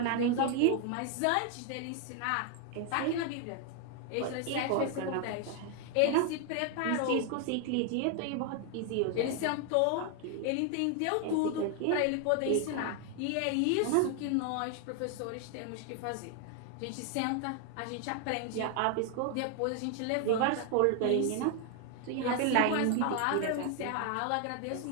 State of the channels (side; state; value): both; different; correlation 0.00